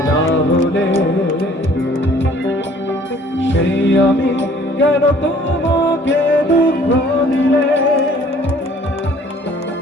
না হলে সেই আমি কেন তোমাকে দুঃখ দিলে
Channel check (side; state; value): both; normal; correlation 0.56